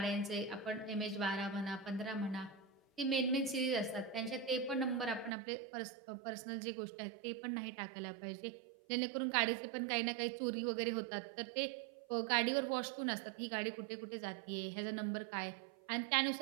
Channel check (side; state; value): left; drops out; at 5.3 s